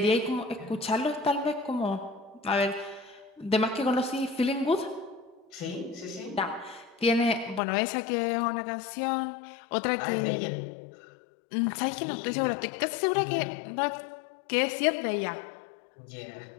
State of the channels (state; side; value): drops out; right; at 7.6 s